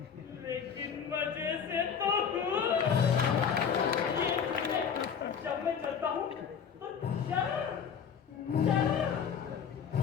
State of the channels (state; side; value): quieter; right; 7.2 dB